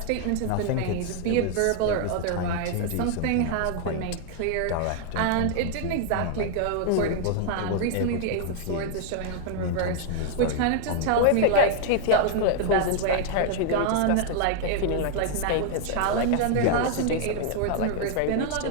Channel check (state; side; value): different; both; correlation 0.00